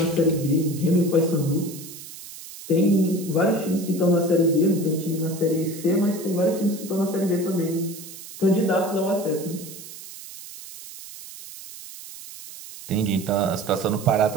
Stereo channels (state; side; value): noise; right; hiss, 14 dB below the sound